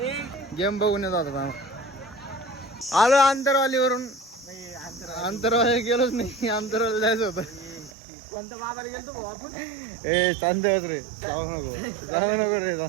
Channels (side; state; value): left; drops out; at 7.9 s